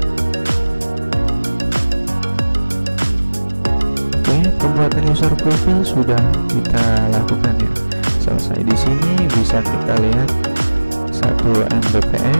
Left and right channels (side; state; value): both; inverted; correlation -1.00